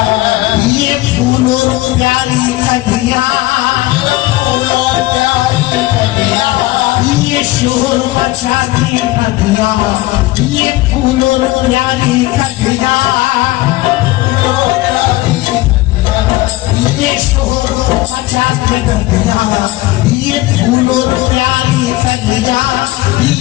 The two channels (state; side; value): quieter; right; 18.4 dB